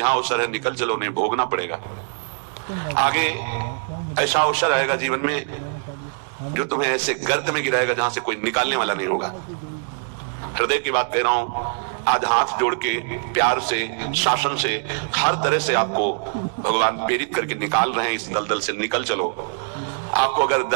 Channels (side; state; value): left; silent; digital silence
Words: अवसर है, निकल चलो, नहीं भोगना पड़ेगा। आगे ऐसा अवसर आएगा जीवन में जो तुम्हें ऐसे गर्त में गिराएगा जहां से कोई निकालने वाला नहीं होगा। हृदय की बात कह रहा हूं। आज हाथ जोड़ के प्यार से, शासन से, हर तरह से आपको भगवान प्रेरित करके निकाल रहे हैं इस दलदल से। निकल चलो। आपको अगर